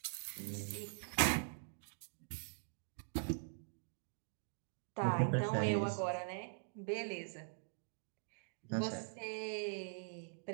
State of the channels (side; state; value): left; silent; digital silence